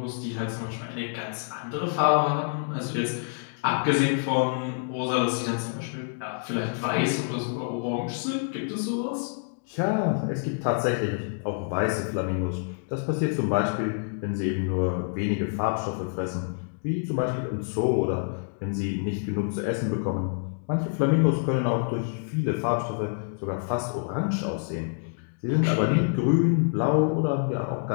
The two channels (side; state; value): right; silent; digital silence